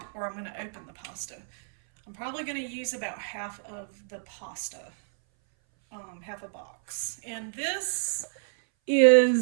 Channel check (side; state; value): left; silent; 59 dB below the other